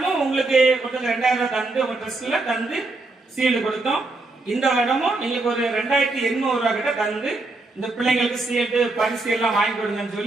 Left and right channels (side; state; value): left; quieter; 3.3 dB